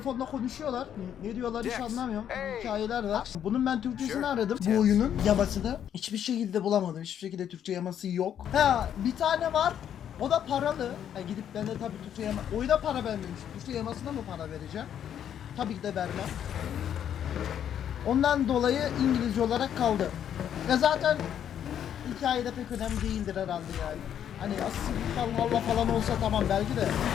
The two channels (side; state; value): right; quieter; 9.5 dB